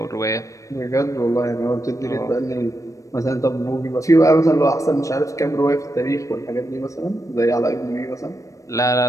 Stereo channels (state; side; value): late; right; 0.16 ms